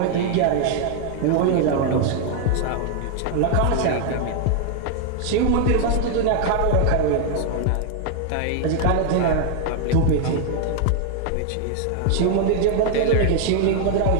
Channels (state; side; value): different; both; correlation 0.00